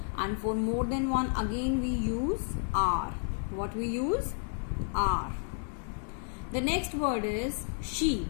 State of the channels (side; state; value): right; silent; digital silence